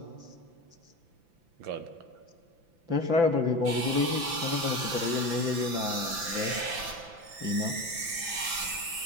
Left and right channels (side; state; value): left; late; 5.9 ms